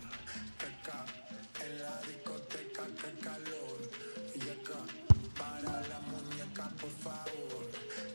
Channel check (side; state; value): both; inverted; correlation -1.00